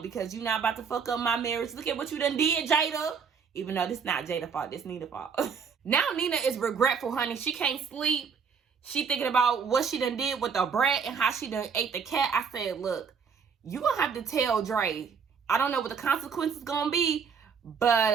because you're not about to fuck up my marriage. Look at what you done did, Jada. Even though this not Jada's fault, this Nina's fault. Now Nina is regretful, honey. She can't sleep. She thinking about what she done did with the brat and how she done ate the cat. I said, look, you gonna have to tell Dre. I don't know what the consequences gonna be,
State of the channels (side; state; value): left; quieter; 6.2 dB